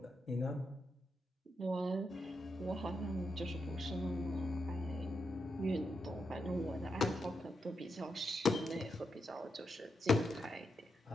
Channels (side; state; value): both; normal; correlation 0.84